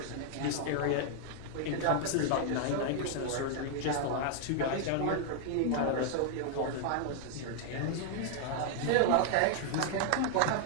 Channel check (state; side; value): different; both; correlation 0.00